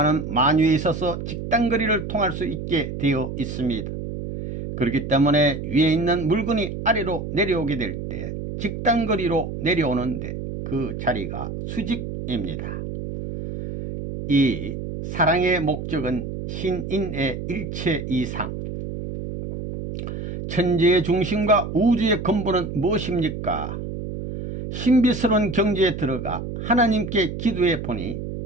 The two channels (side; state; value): right; noise; hum, 6 dB below the sound